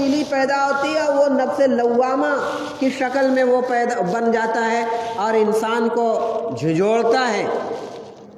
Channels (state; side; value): identical; both; correlation 1.00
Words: پیدا ہوتی ہے، وہ نفس لوامہ کی شکل میں وہ بن جاتا ہے اور انسان کو جھنجھوڑتا ہے